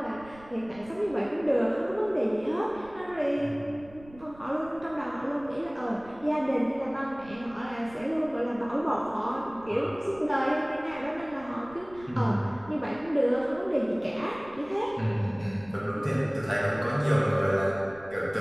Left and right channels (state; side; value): noise; right; rumble, 22 dB below the sound